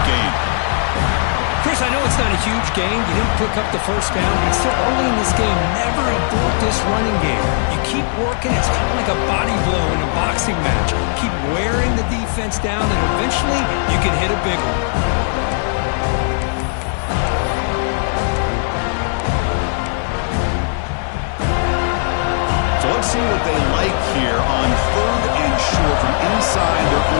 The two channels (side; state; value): right; silent; digital silence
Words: gain. Chris, I know it's not a huge gain. You didn't pick up the first down, but it's still early in this game. Never abort this running game. You keep working. It's kind of like a body blow in a boxing match. Keep wearing the defense down, and eventually you can hit a big one. So let's see what they like here on 3rd and short from inside their